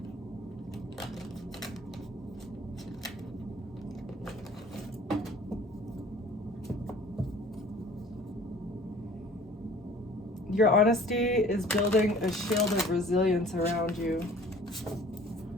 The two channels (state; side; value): normal; both; correlation 0.50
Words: Your honesty is building a shield of resilience around you.